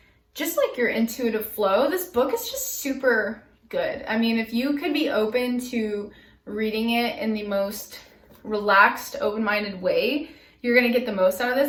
just like your intuitive flow, this book is just super good. I mean, if you could be open to reading it in the most relaxed, open-minded way, you're gonna get the most out of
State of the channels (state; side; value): identical; both; correlation 1.00